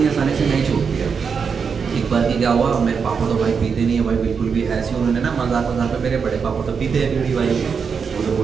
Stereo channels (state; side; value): quieter; left; 6.0 dB